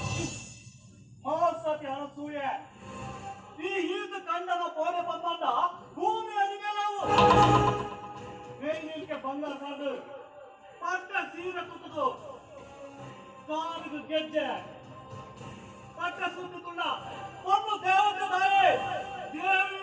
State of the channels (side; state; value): both; identical; correlation 1.00